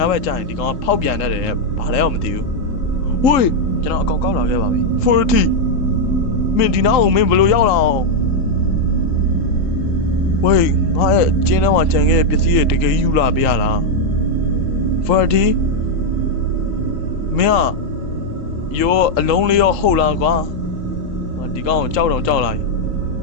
ဘက်ကျရင်ဒီကောင်ကဖောက်ပြန်တတ်တယ်ဘာလဲတော့မသိဘူးဝေးကျွန်တော်အကောင်ကောက်လာခဲ့ပါပြီ40မင်းဒီနားကိုမင်းဘလို့ရောက်လာအောင်ဝေးငါရဲ့ကျင်းထဲမှာခြံခဲ့တဲ့ပစ္စည်းတွေတကယ်ယူလာပေးရလား40မင်းရောအလုံးလေးရောဟုတ်လားကွာဒီကောင်ကိုကြောက်လာပြီ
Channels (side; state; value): right; late; 3.8 ms